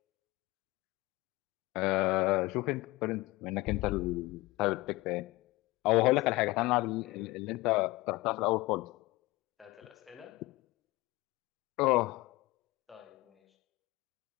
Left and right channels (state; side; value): quieter; right; 20.9 dB